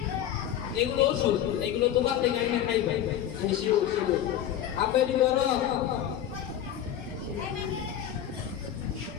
এগুলো ওষুধ এগুলো তোমার থেকে আইনা খাইবে শিউ শিউ আপনি ধরো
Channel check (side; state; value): right; quieter; 10.8 dB